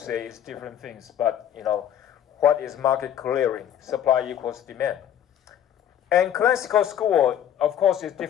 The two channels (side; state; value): right; quieter; 10.2 dB